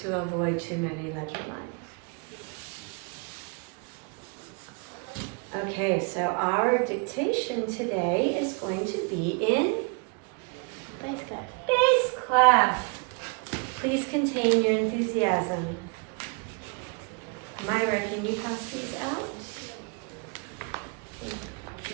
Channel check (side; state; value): left; quieter; 35.0 dB